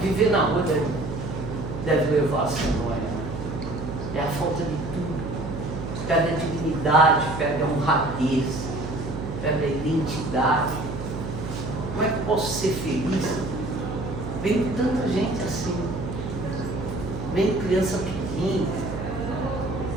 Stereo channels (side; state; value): right; noise; hum, 7 dB below the sound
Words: Viver na rua deve levar a ser nóia. É a falta de tudo. Perde a dignidade, perde a honradez, perde a identidade. Como é que eu posso ser feliz? Vem tanta gente assim. Vem criança pequena.